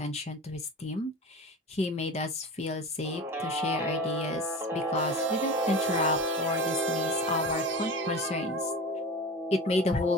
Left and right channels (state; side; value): normal; both; correlation 0.32